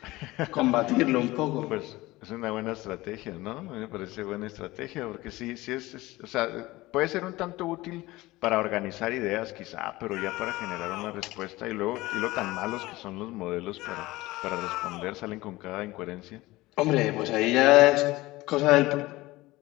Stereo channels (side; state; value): right; quieter; 19.4 dB